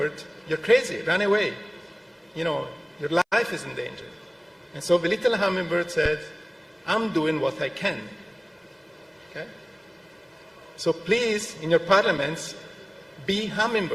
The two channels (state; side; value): identical; both; correlation 1.00